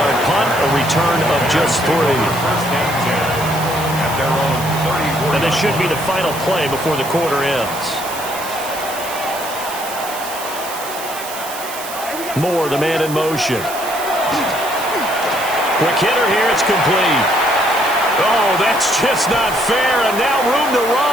punt, a return of just 3. And this should be the final play before the quarter ends. Moore, the man in motion. Quick hitter here, it's complete. Oh, that's just not fair, and now room to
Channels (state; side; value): noise; right; hiss, 11 dB below the sound